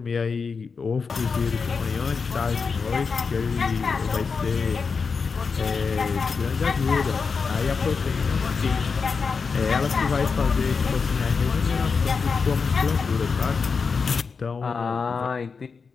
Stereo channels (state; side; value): quieter; right; 5.2 dB